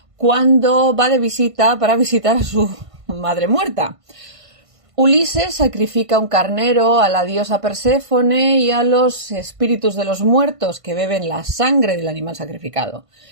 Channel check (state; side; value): late; left; 1.5 ms